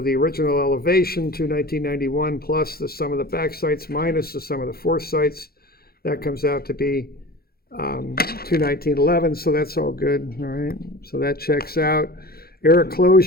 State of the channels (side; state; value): right; late; 0.44 ms